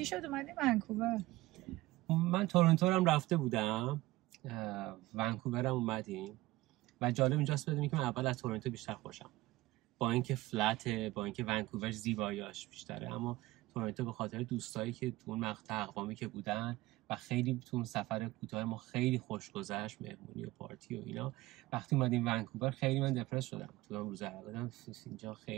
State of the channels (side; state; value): left; quieter; 18.5 dB